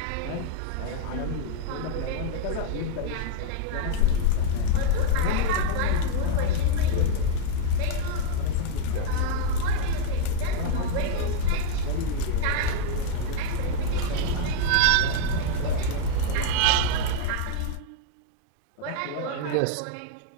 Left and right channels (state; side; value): different; both; correlation 0.00